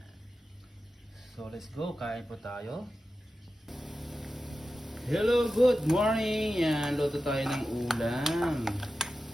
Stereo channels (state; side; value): normal; both; correlation 0.93